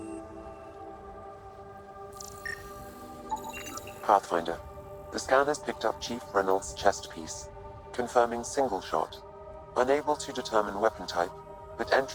Pathfinder. The scan has picked up Chief Reynolds' chest piece, confirming single shot. Unable to determine weapon type, but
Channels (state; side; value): identical; both; correlation 1.00